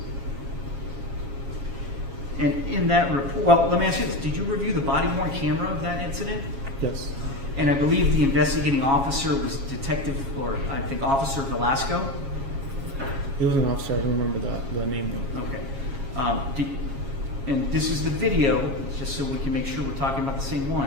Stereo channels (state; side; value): late; left; 7.3 ms